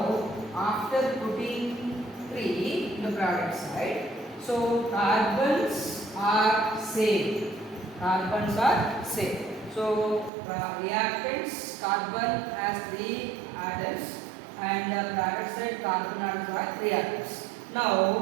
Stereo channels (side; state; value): left; drops out; at 10.3 s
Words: after putting 3 in the product side, so carbons are same. Carbons are same. So reactants, carbon has 3 atoms and the product side carbon atoms are reactants.